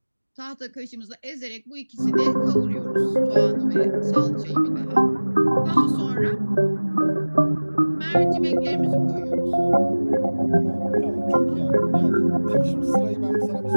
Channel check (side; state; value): both; inverted; correlation -1.00